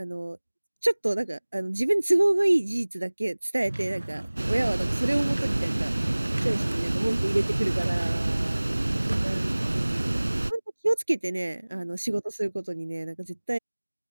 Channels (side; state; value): both; inverted; correlation -1.00